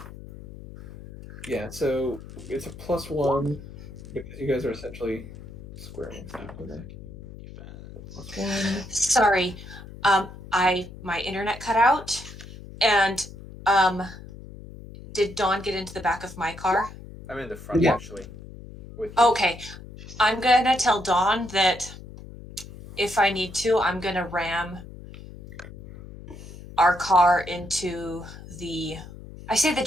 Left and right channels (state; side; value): noise; left; hum, 15 dB below the sound